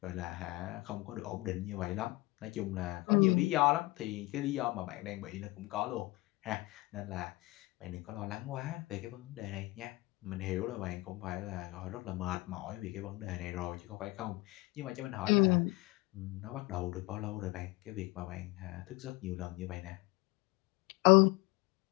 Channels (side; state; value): right; quieter; 21.9 dB